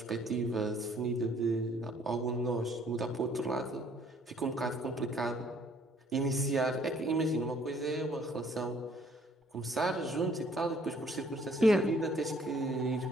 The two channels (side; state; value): both; normal; correlation 0.61